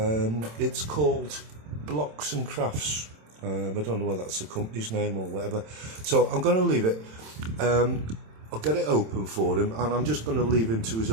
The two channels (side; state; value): left; late; 27 ms